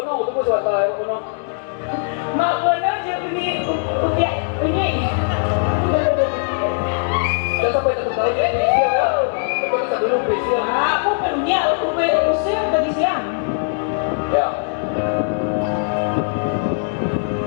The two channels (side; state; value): right; silent; 66 dB below the other